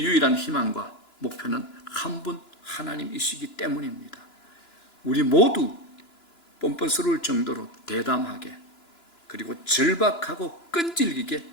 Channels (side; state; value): right; late; 2.9 ms